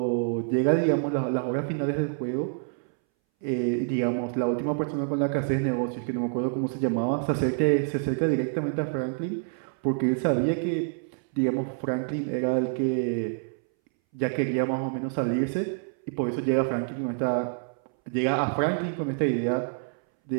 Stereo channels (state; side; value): silent; left; 60 dB below the other